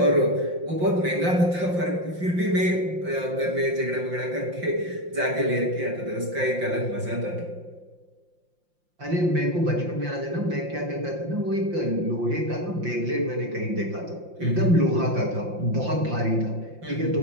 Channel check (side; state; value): left; late; 5.7 ms